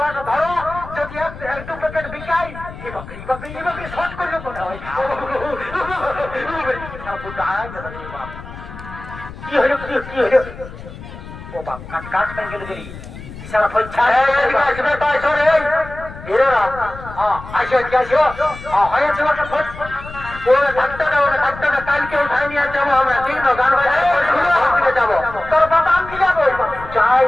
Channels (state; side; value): noise; left; rumble, 14 dB below the sound